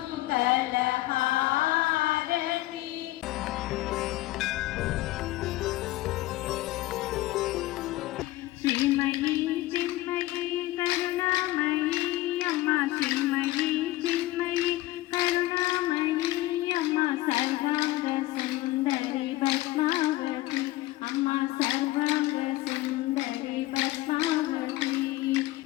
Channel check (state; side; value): quieter; right; 17.4 dB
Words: श्रीमयी चिन्मयी करुणामयी अम्मा श्रीमयी चिन्मयी करुणामयी अम्मा सर्वांग सुंदरी पद्मावती अम्मा सर्वांग सुंदरी पद्मावती